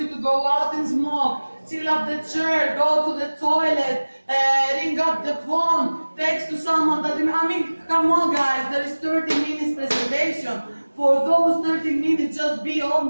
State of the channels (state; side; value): inverted; both; correlation -1.00